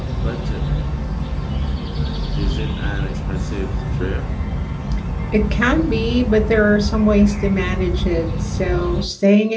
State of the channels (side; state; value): both; identical; correlation 1.00